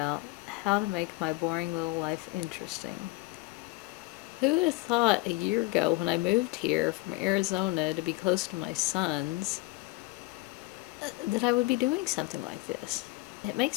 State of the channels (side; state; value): right; quieter; 21.7 dB